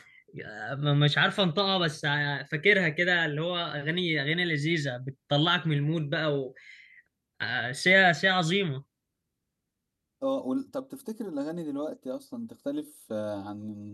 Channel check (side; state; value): both; identical; correlation 1.00